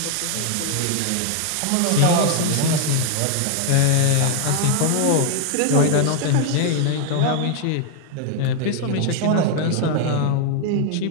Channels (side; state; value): both; different; correlation 0.00